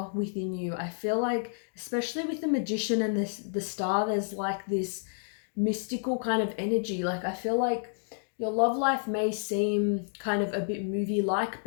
within you. I feel like, especially with the Magician and the star, there's like this mystical kind of energy. Like I feel like your love life may seem kind of a bit movie-like,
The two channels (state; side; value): silent; right; digital silence